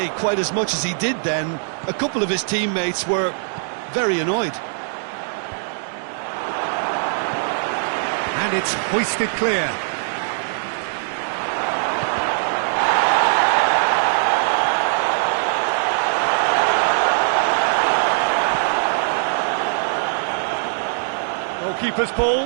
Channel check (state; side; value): silent; left; digital silence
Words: quite as much as he did then. A couple of his teammates were very annoyed. And it's hoisted clear. Goalkeeper's